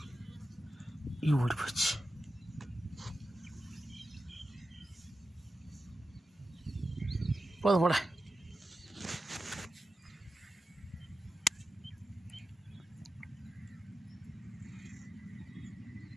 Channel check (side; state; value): both; normal; correlation 0.92